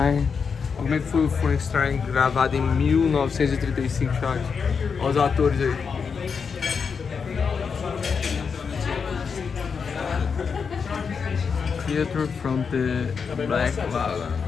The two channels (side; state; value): right; quieter; 5.9 dB